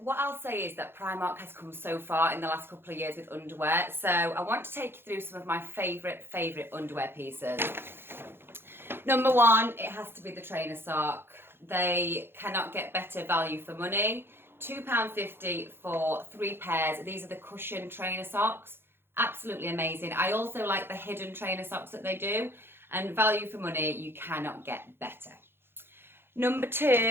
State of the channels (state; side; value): late; left; 0.11 ms